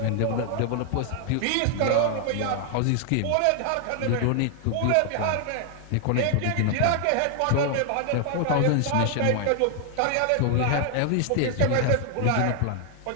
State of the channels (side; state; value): both; different; correlation 0.00